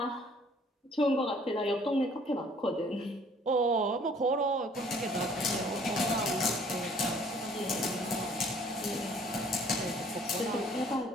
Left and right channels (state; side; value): normal; both; correlation 0.56